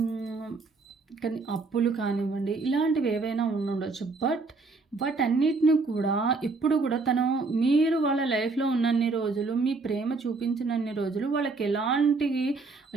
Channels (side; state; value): left; quieter; 3.9 dB